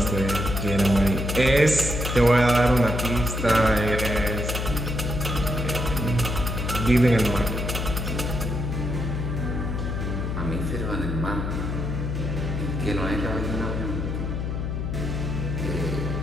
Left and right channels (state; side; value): noise; left; hum, 2 dB below the sound